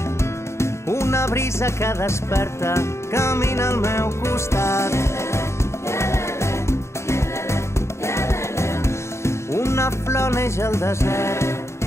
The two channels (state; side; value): late; right; 0.13 ms